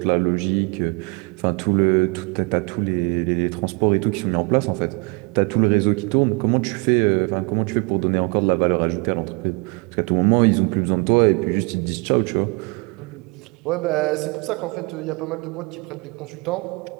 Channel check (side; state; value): left; quieter; 31.5 dB